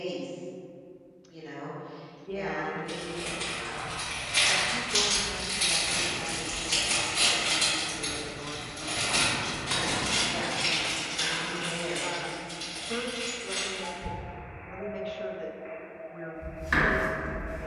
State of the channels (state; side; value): identical; both; correlation 1.00